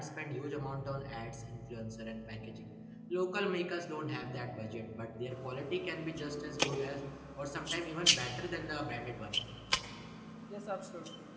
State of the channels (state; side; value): identical; both; correlation 1.00